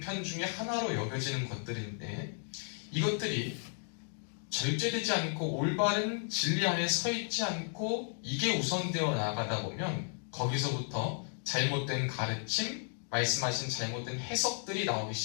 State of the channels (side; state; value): right; silent; 55 dB below the other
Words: 중에 하나로 여겨지는 것들인데 이것들이 절제되지 않고 올바른 진리 안에 서 있지 않고 이게 우선되어 나가다 보면 거기서부터 잘못된 가르침, 말씀하신 잘못된 해석들이 나오기